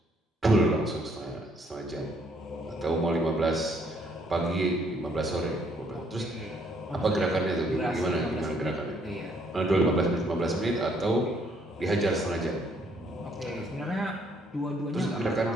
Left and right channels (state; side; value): normal; both; correlation 0.67